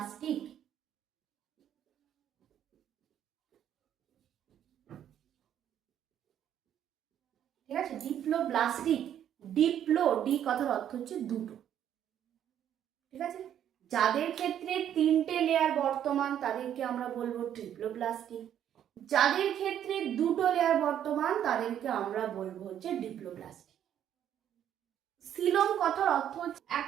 ঠিক আছে, ডিপ্লোব্লাস্টিক। ডিপ্লো, ডি কথার অর্থ হচ্ছে দুটো। ঠিক আছে, যাদের ক্ষেত্রে তিনটে লেয়ার বর্তমান তাদেরকে আমরা বলবো ট্রিপ্লোব্লাস্টিক, যাদের ক্ষেত্রে দুটো লেয়ার বর্তমান তাদেরকে আমরা বলবো হচ্ছে ডিপ্লোব্লাস্টিক। সিলোম কথার অর্থ হচ্ছে, এক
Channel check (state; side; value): quieter; left; 10.1 dB